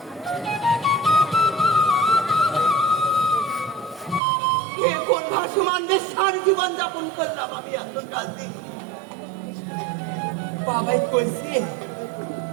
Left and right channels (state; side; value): drops out; left; at 4.2 s